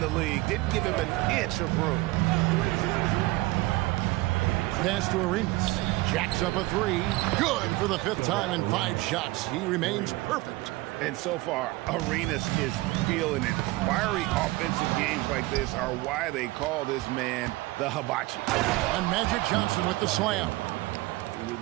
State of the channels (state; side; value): quieter; left; 20.5 dB